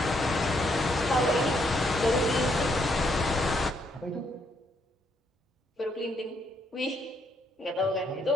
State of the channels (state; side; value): normal; both; correlation 0.73